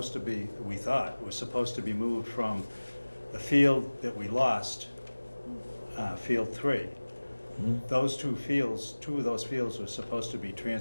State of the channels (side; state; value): both; inverted; correlation -1.00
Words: to be, we thought, were supposed to be moved from the field that we lost, Field 3. Those two of those fields were supposed to be